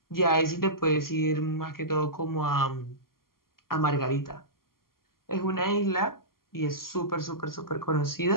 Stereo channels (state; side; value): late; right; 0.92 ms